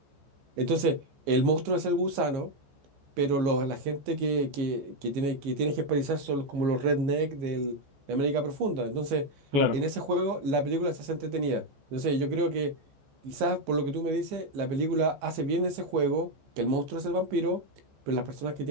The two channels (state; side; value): late; left; 14 ms